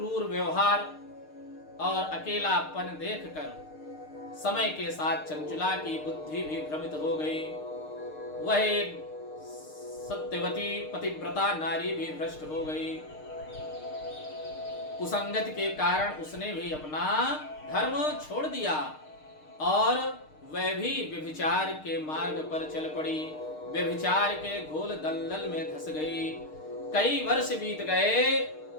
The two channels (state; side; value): late; right; 6.5 ms